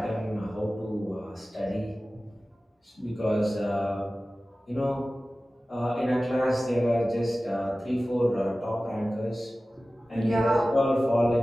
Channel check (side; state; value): both; normal; correlation 0.96